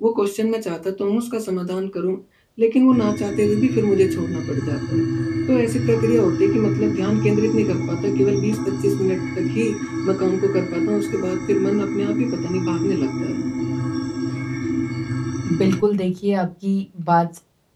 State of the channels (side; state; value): both; identical; correlation 1.00